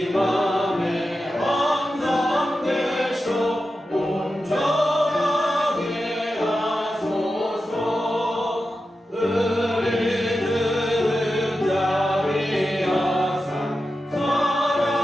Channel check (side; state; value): both; normal; correlation 0.91